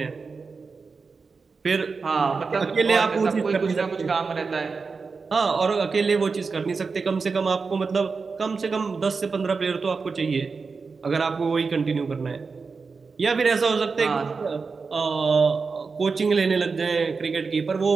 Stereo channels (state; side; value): quieter; left; 4.7 dB